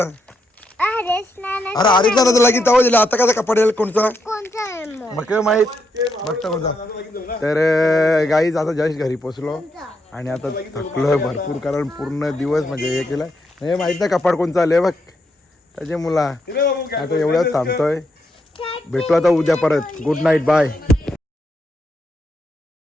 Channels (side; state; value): both; normal; correlation 0.80